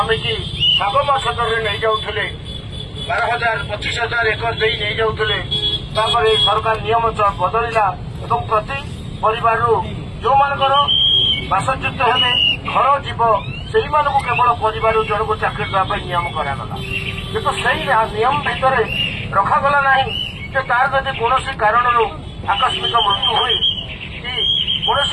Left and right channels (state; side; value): identical; both; correlation 1.00